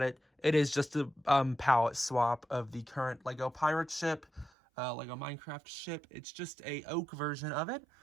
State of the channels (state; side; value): drops out; left; at 4.5 s